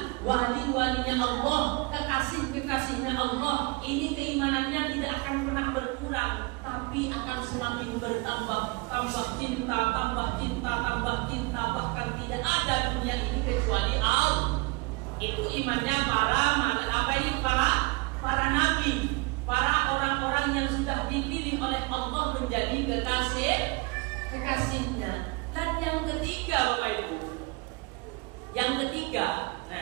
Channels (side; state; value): left; quieter; 27.6 dB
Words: wali-walinya Allah, kekasih-kekasihnya Allah. Ini keimanannya tidak akan pernah berkurang, tapi akan semakin bertambah. Tambah cinta, bahkan tidak ada dunia ini kecuali Allah. Itu imannya para nabi, para orang-orang yang sudah dipilih oleh Allah menjadi kekasihnya. Dan yang ketiga Bapak Ibu, yang